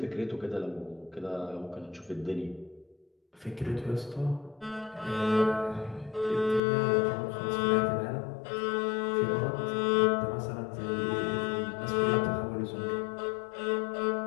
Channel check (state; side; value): drops out; right; at 6.6 s